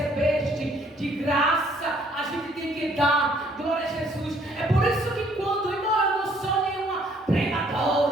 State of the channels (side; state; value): both; normal; correlation 0.63